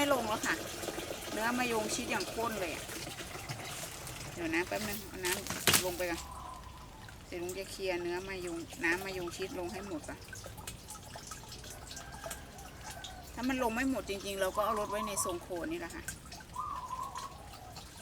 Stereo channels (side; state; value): both; identical; correlation 1.00